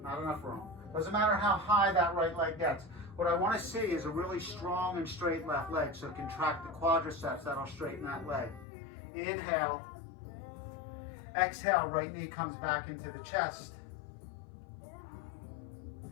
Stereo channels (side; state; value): right; drops out; at 8.7 s